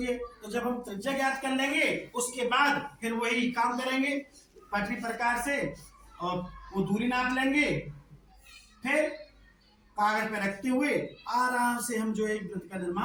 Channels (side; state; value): both; identical; correlation 1.00